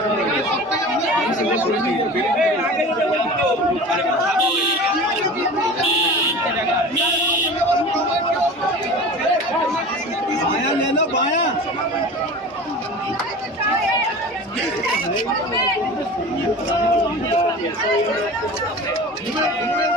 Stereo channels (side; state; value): both; normal; correlation 0.35